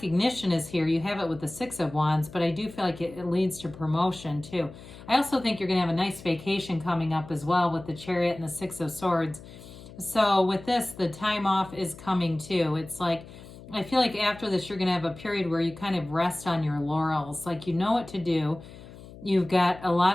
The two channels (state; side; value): noise; left; hum, 17 dB below the sound